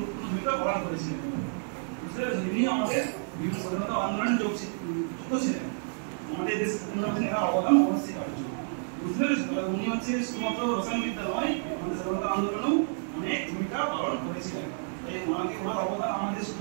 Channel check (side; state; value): left; silent; digital silence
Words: ভূমিকা পালন করেছিলেন। বুঝতে পেরেছেন? ইনি আমাদের বিভিন্ন স্বাধীনতা আন্দোলনে যুক্ত ছিলেন, আমাদের দেশ উন্নয়নে অবদান অবশ্যই। বুঝতে পেরেছেন? তবে উনি হচ্ছে শুধুমাত্র রসায়ন বিদ্যা নয়, আমাদের স্বাধীনতা আন্দোলনেও অনেক ভূমিকা পালন করেছিলেন। তাই ওনাকে, ওনার অবদান আমাদের